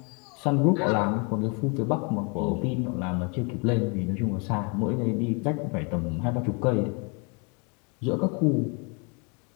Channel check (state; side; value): quieter; right; 34.0 dB